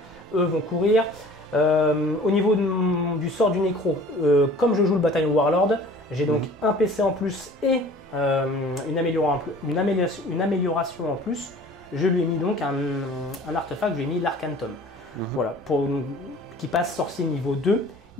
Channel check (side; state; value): both; normal; correlation 0.47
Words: Eux vont courir. Au niveau du sort du nécro, comme je joue le bataillon Warlord, j'ai donc un PC en plus et une amélioration en plus. Je lui ai mis donc un artefact, je lui ai mis l'Arcantum. Voilà, qui passe sorcier niveau 2.